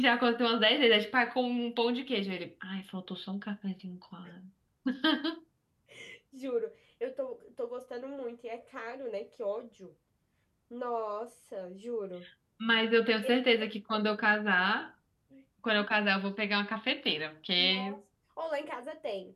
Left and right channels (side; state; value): both; identical; correlation 1.00